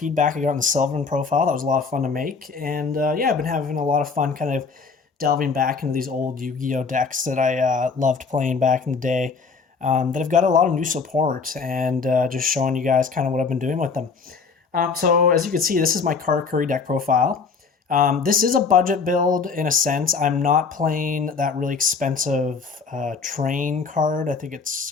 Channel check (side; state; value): right; quieter; 5.0 dB